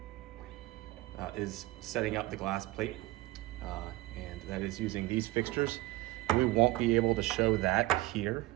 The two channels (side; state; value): left; quieter; 18.7 dB